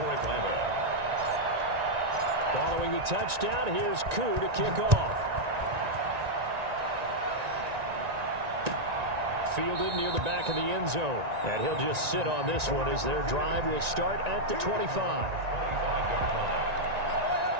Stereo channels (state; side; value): late; left; 1.9 ms